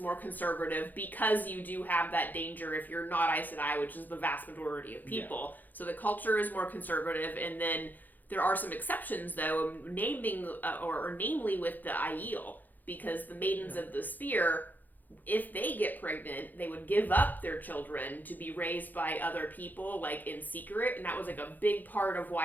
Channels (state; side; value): late; right; 0.085 ms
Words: conservative because you do have that danger if you're not Aes Sedai, which is the vast majority of people. Yeah. So the culture is more conservative, and then there are some exceptions, though, namely with the Aiel, because the Maidens of the Spear, if they get pregnant, they would give up their children to be raised by other people, in secret. And that was, a big part of